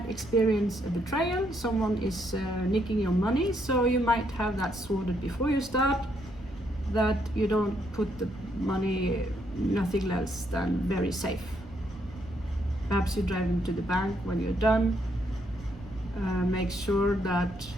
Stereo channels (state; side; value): noise; right; rumble, 19 dB below the sound